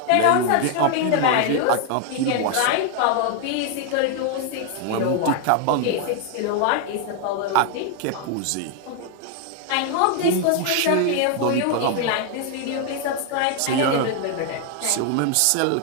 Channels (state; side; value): different; both; correlation 0.00